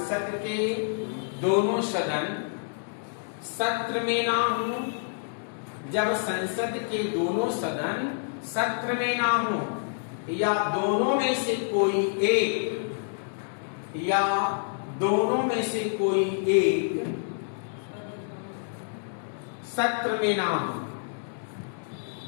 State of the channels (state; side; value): silent; right; digital silence